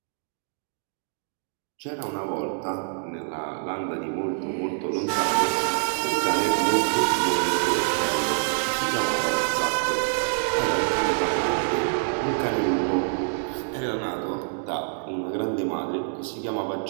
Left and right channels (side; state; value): left; silent; digital silence